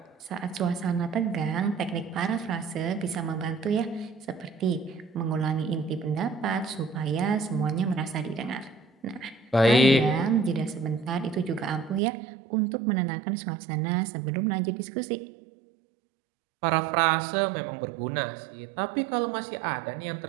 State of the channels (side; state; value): left; drops out; at 12.0 s